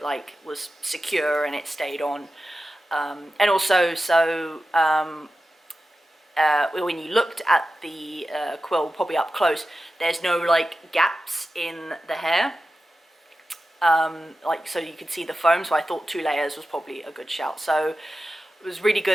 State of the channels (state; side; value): normal; both; correlation 0.93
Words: like was secure and it stayed on. And also, so when you looked at the quill, probably up close, there's no like gaps in the hair. Like, so you could see the foam, so I thought 2 layers was probably a good shout. So it was really